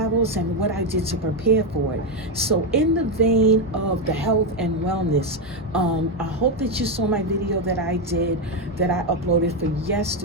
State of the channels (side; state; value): both; normal; correlation 0.06